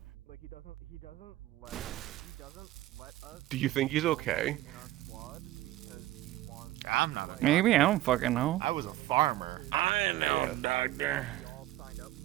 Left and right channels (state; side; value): quieter; left; 15.8 dB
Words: Like he doesn't let us. Do you think he's okay? I'm not. Maybe, I don't fucking know. I was a farmer. I know, doctor.